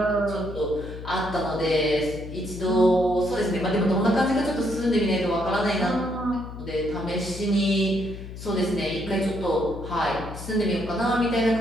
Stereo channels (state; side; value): noise; left; hum, 11 dB below the sound